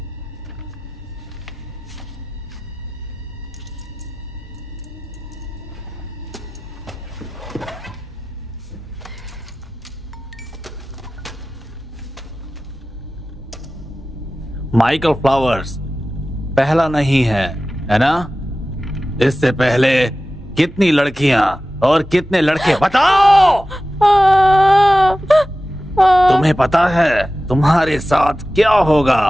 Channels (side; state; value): both; normal; correlation 0.95